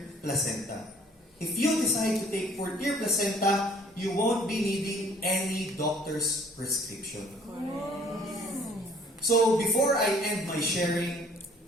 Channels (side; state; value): both; normal; correlation 0.56